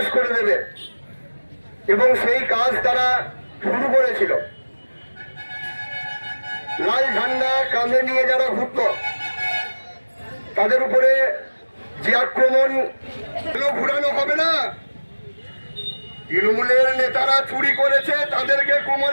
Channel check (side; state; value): both; inverted; correlation -1.00